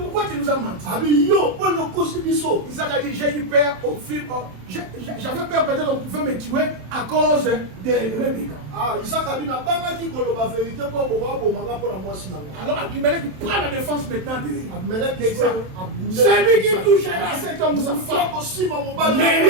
tu nous as menti? Isaac a dit, j'ai eu peur au film. J'avais peur peut-être qu'on pouvait me tuer à cause de Rebecca. Alors Abimelech prend la défense maintenant d'Isaac. Celui qui touchera cet homme, sa femme,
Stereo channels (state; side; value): late; left; 27 ms